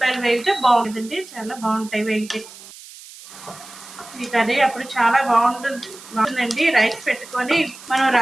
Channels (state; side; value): noise; right; hiss, 18 dB below the sound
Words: వేగితే బాగుంటుందండి, చాలా బాగుంటాయి వేగితే ఈ కర్రీ. అప్పుడు చాలా బాగుంటుందండి. రైస్ పెట్టుకొని మనం